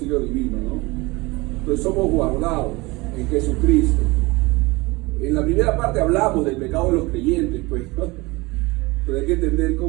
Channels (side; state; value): left; quieter; 23.3 dB